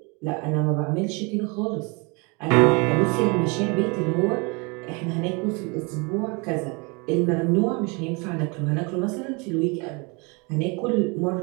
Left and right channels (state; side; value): quieter; left; 30.2 dB